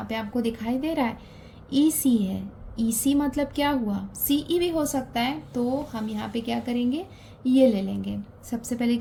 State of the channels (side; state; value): both; identical; correlation 1.00